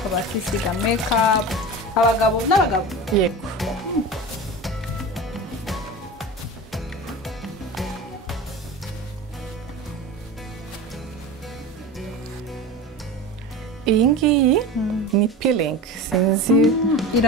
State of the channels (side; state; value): both; normal; correlation 0.30